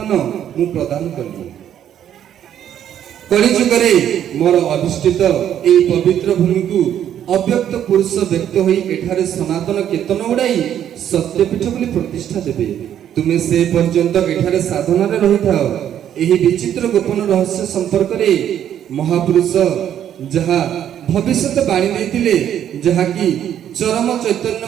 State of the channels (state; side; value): quieter; left; 10.2 dB